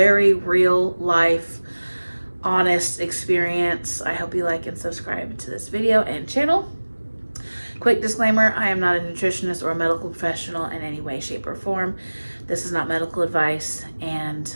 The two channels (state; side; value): inverted; both; correlation -1.00